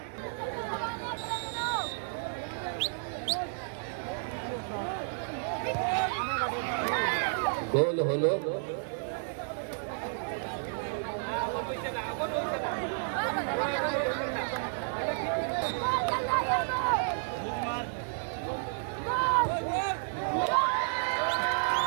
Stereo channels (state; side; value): silent; left; digital silence